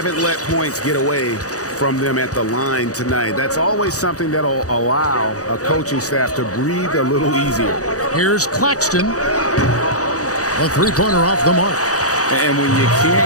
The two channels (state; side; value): late; right; 0.66 ms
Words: let points get away from them at the line tonight. That's always something that'll allow a coaching staff to breathe a little easier. Here's Claxton. A 3-pointer off the mark. And when you